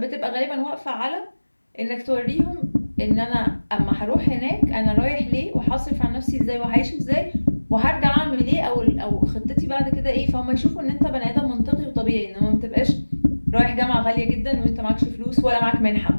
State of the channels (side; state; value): both; inverted; correlation -1.00